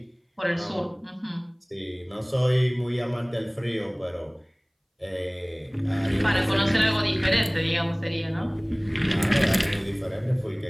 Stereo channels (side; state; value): both; identical; correlation 1.00